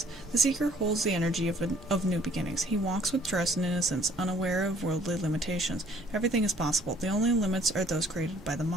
The Seeker holds the energy of new beginnings. He walks with trust and innocence, unaware of worldly limitations. Everything is possible. The only limits are those created by the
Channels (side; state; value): right; noise; rumble, 21 dB below the sound